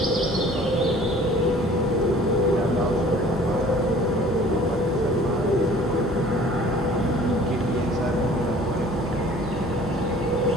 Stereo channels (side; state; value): both; normal; correlation 0.50